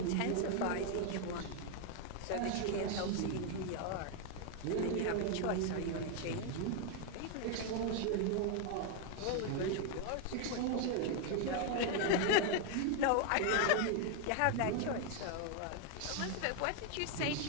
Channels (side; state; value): both; different; correlation 0.01